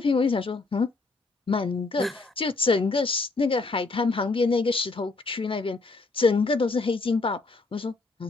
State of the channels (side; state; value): right; quieter; 3.7 dB